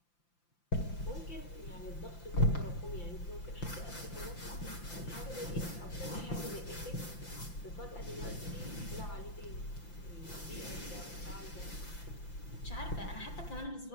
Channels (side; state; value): right; late; 5.8 ms